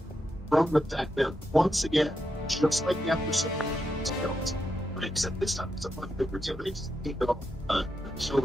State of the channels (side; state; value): both; normal; correlation 0.84